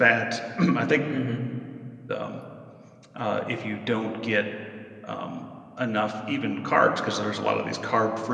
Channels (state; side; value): identical; both; correlation 1.00